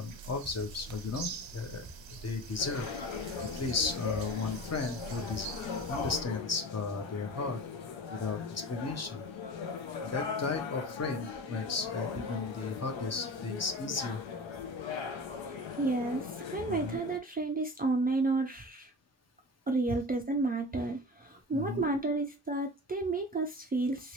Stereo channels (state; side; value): normal; both; correlation 0.33